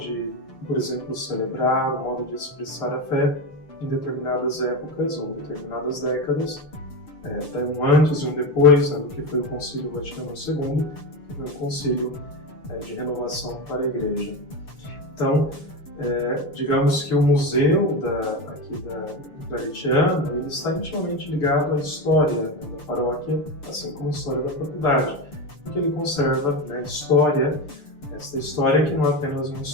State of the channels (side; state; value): right; late; 6.8 ms